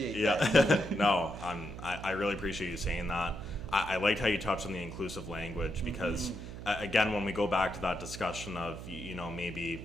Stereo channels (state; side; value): noise; right; hum, 10 dB below the sound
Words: that. No, I really appreciate you saying that. I liked how you touched on the inclusive language, because again, when we go back to that discussion of